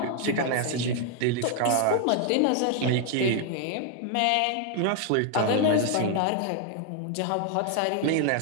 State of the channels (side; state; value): both; different; correlation 0.00